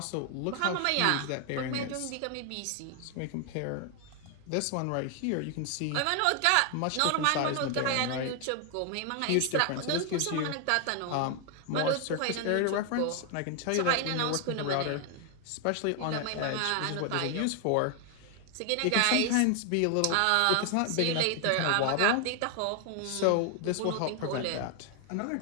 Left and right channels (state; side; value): different; both; correlation 0.00